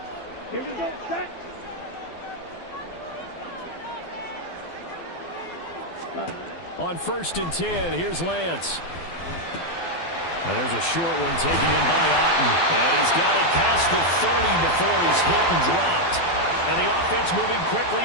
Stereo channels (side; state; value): right; late; 12 ms